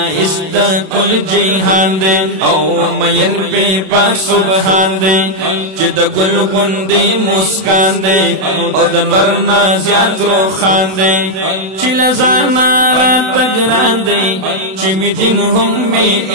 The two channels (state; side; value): late; left; 32 ms